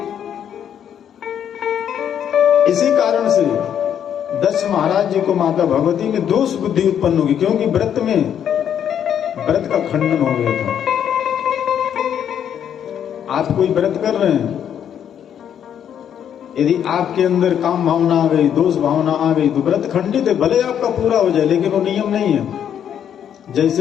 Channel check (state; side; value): quieter; right; 9.2 dB